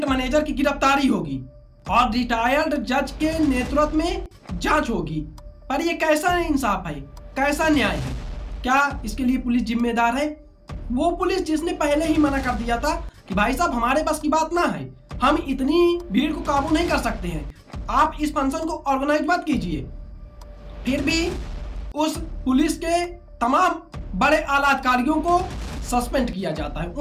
मैनेजर की गिरफ्तारी होगी और रिटायर्ड जज के नेतृत्व में जांच होगी। पर ये कैसा इंसाफ है, कैसा न्याय है? क्या इसके लिए पुलिस जिम्मेदार है? वो पुलिस जिसने पहले ही मना कर दिया था कि भाई साहब हमारे बस की बात ना है, हम इतनी भीड़ को काबू नहीं कर सकते हैं, आप इस फंक्शन को ऑर्गेनाइज मत कीजिए। फिर भी उस पुलिस के तमाम बड़े आला अधिकारियों को सस्पेंड किया जाता है,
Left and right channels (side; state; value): both; identical; correlation 1.00